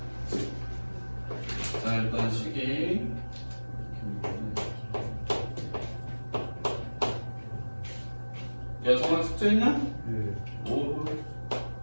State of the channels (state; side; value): inverted; both; correlation -1.00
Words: 자, 일단 시기. 야, 정말 숙제 있냐? 네. 오.